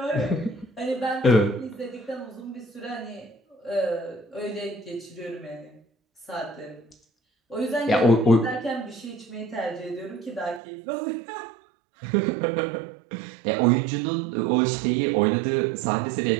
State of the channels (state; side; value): drops out; left; at 10.6 s